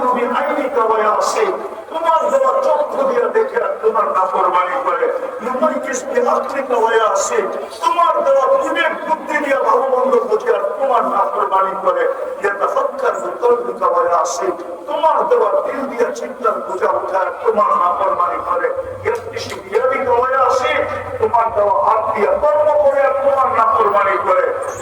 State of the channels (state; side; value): identical; both; correlation 1.00